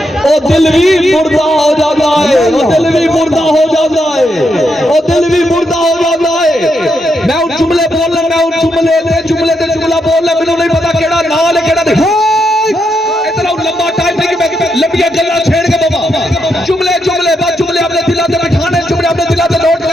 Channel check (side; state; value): both; normal; correlation 0.81